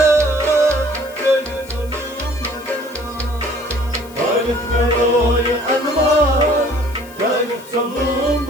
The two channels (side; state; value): left; noise; hiss, 22 dB below the sound